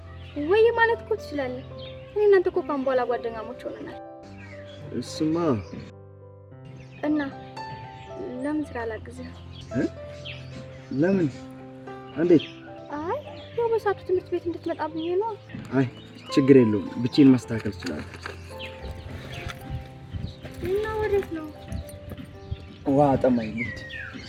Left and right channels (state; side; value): identical; both; correlation 1.00